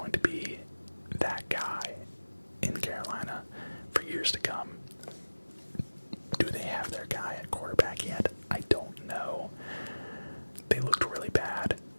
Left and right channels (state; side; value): inverted; both; correlation -1.00